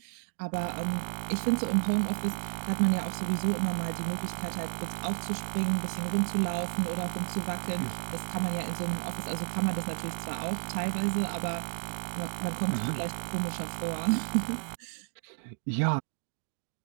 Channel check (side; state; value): left; silent; digital silence